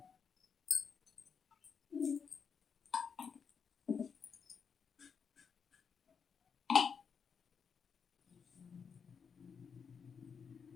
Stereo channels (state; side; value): quieter; right; 6.3 dB